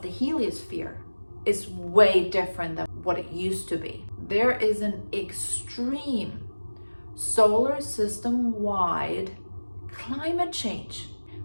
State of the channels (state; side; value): inverted; both; correlation -1.00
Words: the heliosphere is way different than what it used to be. There is an extreme solar system-wide climate change.